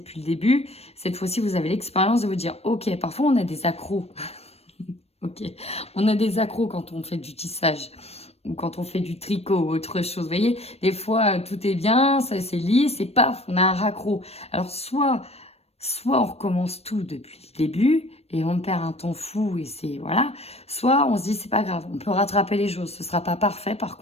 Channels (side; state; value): right; late; 0.30 ms